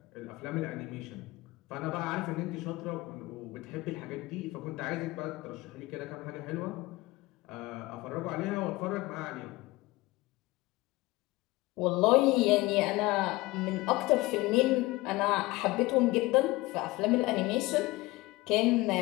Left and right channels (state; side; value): quieter; right; 20.7 dB